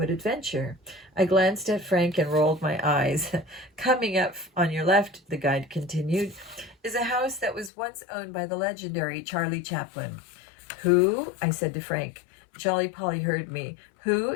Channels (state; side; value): drops out; right; at 7.7 s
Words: Adventure." I glanced at Frank and rolled my eyes. "Coming up on your left," the guide continued, "is a house that was once owned by the legendary Charlie Chaplin." "Who?" I said to Frank. Jolly Polly heard me. "Who